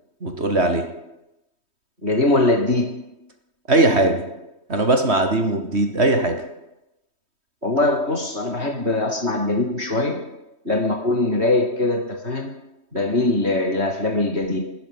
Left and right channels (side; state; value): left; late; 3.2 ms